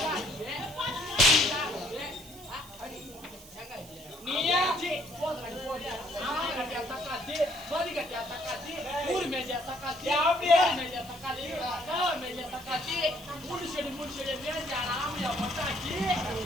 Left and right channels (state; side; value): noise; right; hiss, 18 dB below the sound